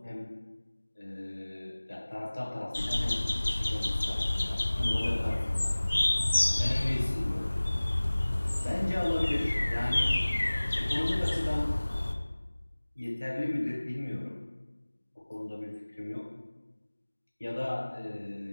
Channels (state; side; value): inverted; both; correlation -1.00